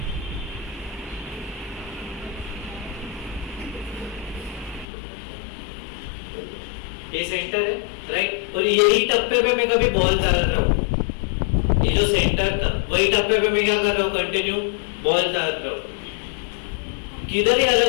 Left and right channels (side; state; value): right; drops out; at 4.9 s